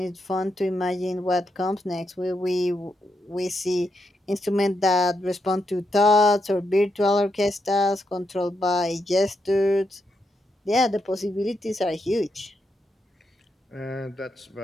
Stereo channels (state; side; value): normal; both; correlation 0.82